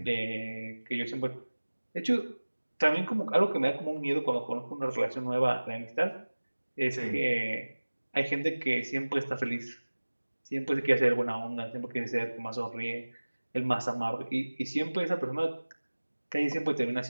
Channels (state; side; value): inverted; both; correlation -1.00